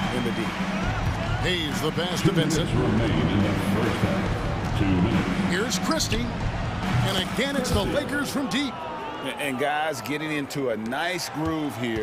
in the D. Hayes the pass to Vincent. Here's Christie. And again, it's the Lakers from deep. And guys getting into a nice groove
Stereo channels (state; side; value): identical; both; correlation 1.00